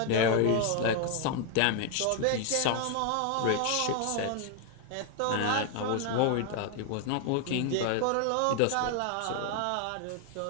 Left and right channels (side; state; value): both; different; correlation 0.00